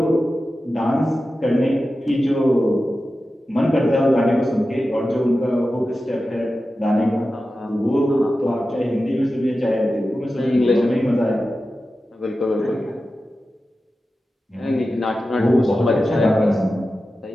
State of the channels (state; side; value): normal; both; correlation 0.93